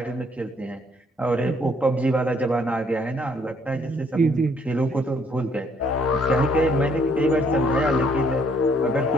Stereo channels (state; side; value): normal; both; correlation 0.66